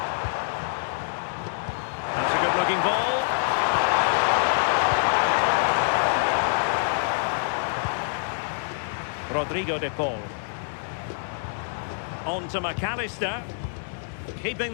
That's a good-looking ball. Rodrigo de Paul. On to McAllister. Keeping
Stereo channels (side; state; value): right; silent; digital silence